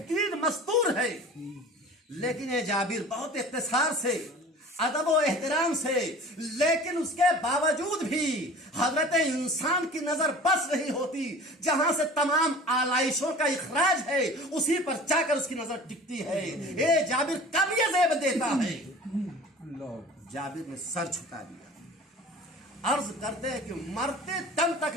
مستور ہے, لیکن یہ جابر بہت اختصار سے ادب و احترام سے, لیکن اس کے باوجود بھی حضرت انسان کی نظر بس نہیں ہوتی. جہاں سے تمام آلائشوں کا اخراج ہے اسی پر جا کر اس کی نظر ٹکتی ہے. اے جابر کب یہ زیب دیتا ہے؟ جابر نے سر جھکا دیا, عرض کرتے ہیں کہ مرتے دم تک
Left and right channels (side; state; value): both; normal; correlation 0.42